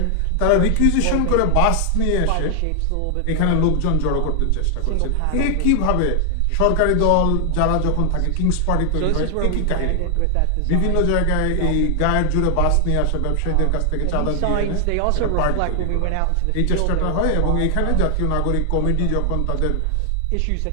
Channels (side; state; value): both; different; correlation 0.00